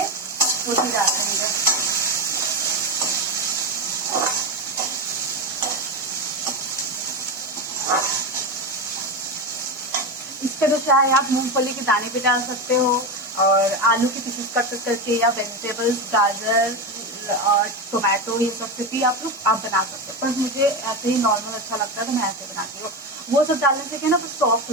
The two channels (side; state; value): both; normal; correlation 0.16